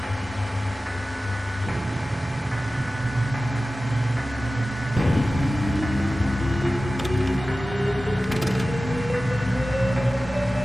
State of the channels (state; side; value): normal; both; correlation 0.95